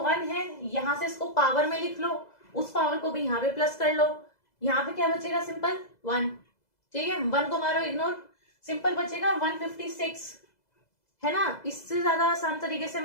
है, यहाँ से इसको पावर में लिख लो, उस पावर को भी यहाँ पे प्लस कर लो, यहाँ पे क्या बचेगा सिंपल 1, ठीक है, 1 को मारो इग्नोर, सिंपल बचेगा 156, है ना। इससे ज्यादा आसान तरीके से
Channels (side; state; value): right; late; 2.0 ms